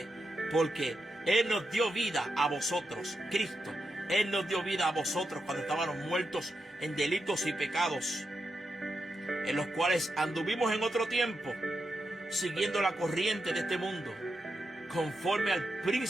porque Él nos dio vida a vosotros, Cristo. Él nos dio vida a vosotros cuando estábamos muertos en delitos y pecados, en los cuales anduvimos en otro tiempo, siguiendo la corriente de este mundo, conforme al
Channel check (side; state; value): both; normal; correlation 0.86